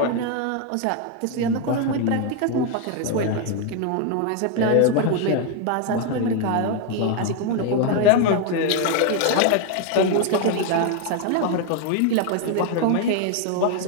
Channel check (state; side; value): different; both; correlation 0.01